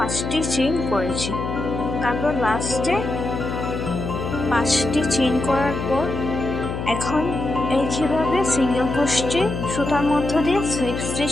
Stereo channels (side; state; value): left; noise; hum, 5 dB below the sound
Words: চেইন করেছি। তারপর লাস্টে 5টি চেইন করার পর এখন একইভাবে সিঙ্গেল ক্রোশে সুতার মধ্য দিয়ে স্লিপ